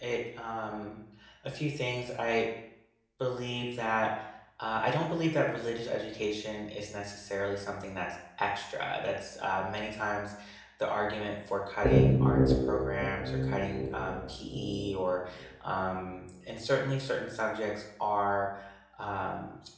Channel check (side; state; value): both; identical; correlation 1.00